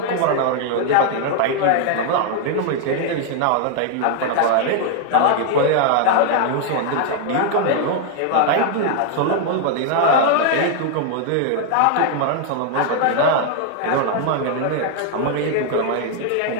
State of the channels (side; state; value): both; different; correlation 0.00